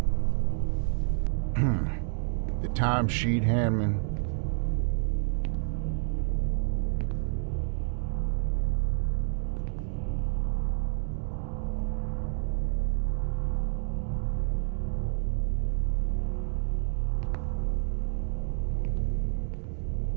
The timesheet handman.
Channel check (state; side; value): silent; left; digital silence